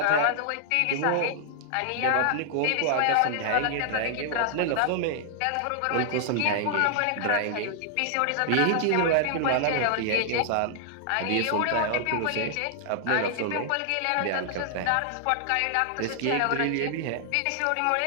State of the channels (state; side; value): different; both; correlation -0.01